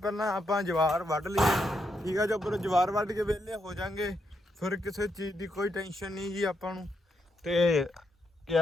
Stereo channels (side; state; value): both; normal; correlation 0.80